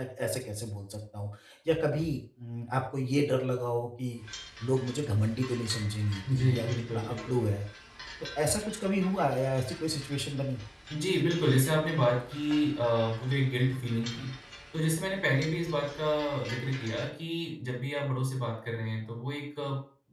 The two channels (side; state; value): both; identical; correlation 1.00